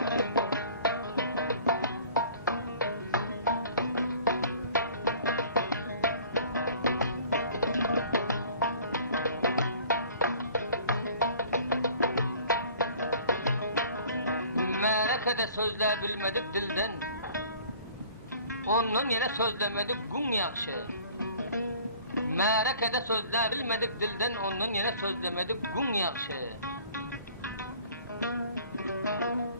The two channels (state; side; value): inverted; both; correlation -0.50